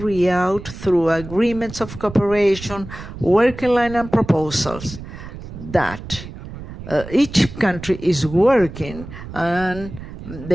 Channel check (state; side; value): noise; right; rumble, 13 dB below the sound